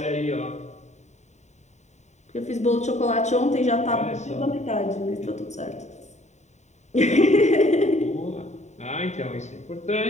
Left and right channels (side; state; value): right; late; 0.34 ms